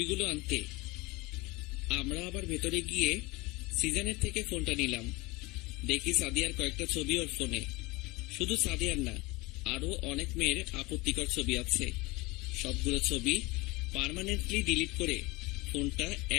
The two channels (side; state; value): right; quieter; 23.3 dB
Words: আনতে। আমরা আবার ভেতরে গিয়ে সিজনের থেকে ফোনটা নিলাম। দেখি সাদিয়ার কয়েকটা ছবি ওর ফোনে। শুধু সাদিয়ার না, আরো অনেক মেয়ের আপত্তিকর ছবি আছে। সবগুলো ছবি পার্মানেন্টলি ডিলিট করে ফোনটা